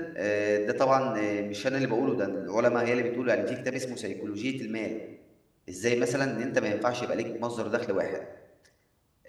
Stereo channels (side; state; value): both; identical; correlation 1.00